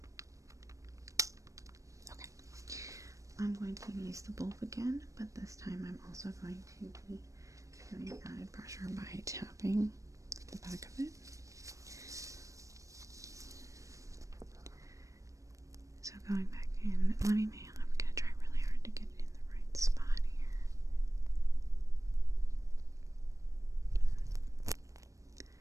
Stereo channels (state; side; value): late; left; 0.16 ms